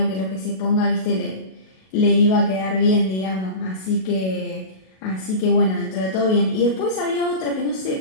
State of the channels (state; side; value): late; right; 37 ms